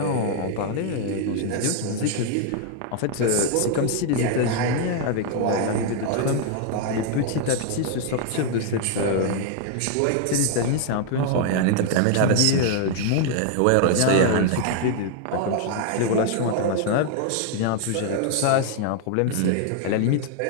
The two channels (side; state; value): both; different; correlation 0.00